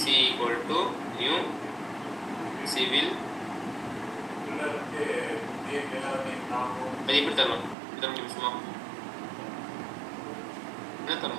C equal to new civil. அது எப்படி தரணும்? தர முடியும் சும்மா என்ன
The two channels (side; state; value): left; drops out; at 7.8 s